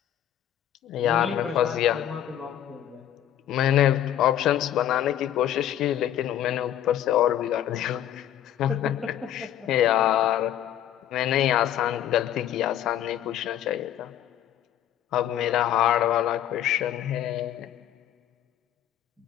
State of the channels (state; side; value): quieter; right; 11.1 dB